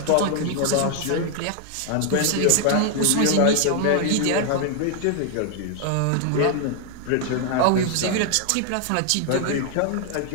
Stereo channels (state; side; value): different; both; correlation 0.00